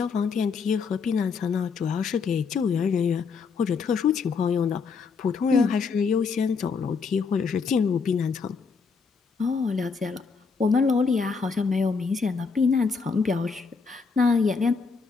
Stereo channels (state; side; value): quieter; right; 5.2 dB